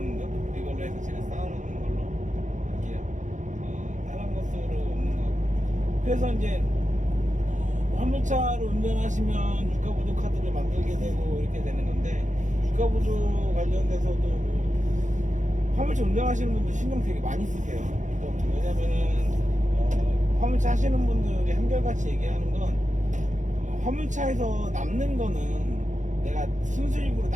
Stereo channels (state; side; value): late; left; 0.36 ms